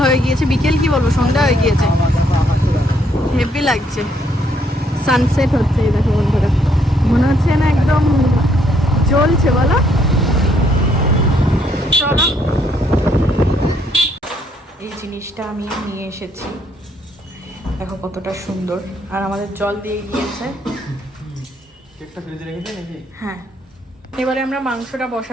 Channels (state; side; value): normal; both; correlation 0.70